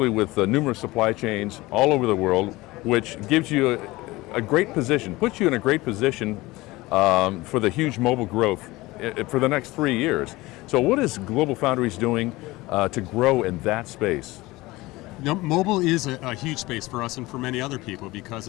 with numerous supply chains all over the world, which gives you a great position, puts you in a great position for the huge mobile growth for the next 3 years. So what is GlobalFoundries doing to grow in that space? You know, mobile is a huge space for us and for many other people because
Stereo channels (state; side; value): quieter; right; 20.3 dB